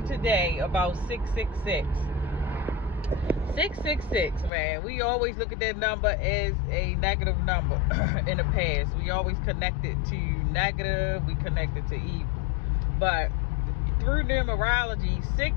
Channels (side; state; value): right; drops out; at 4.5 s